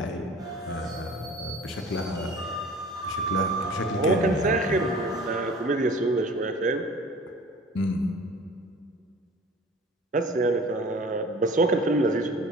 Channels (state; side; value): normal; both; correlation 0.44